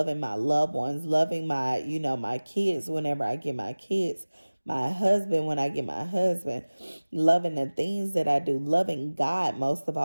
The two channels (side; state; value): both; inverted; correlation -1.00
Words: my loved ones, loving my kids whenever I get my kids. my husband when I get my husband, loving the things that I do, loving God most of